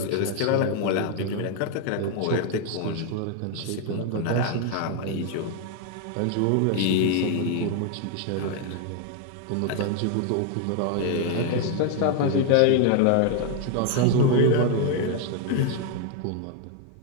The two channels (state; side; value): different; both; correlation 0.00